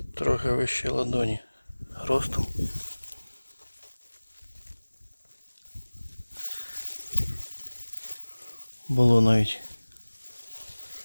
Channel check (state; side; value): inverted; both; correlation -1.00